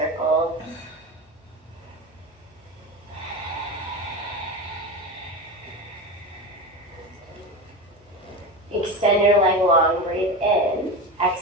Extend your leg long, breathe in.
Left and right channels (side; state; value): both; normal; correlation 0.23